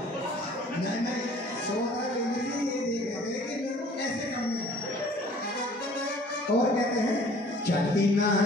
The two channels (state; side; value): normal; both; correlation 0.52